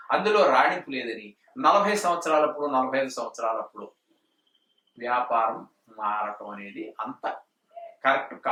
అందులో రాణింపు లేదని 40 సంవత్సరాలప్పుడు 45 సంవత్సరాలప్పుడు వ్యాపారం మారటం అనేది అంత కరెక్ట్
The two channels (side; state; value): both; identical; correlation 1.00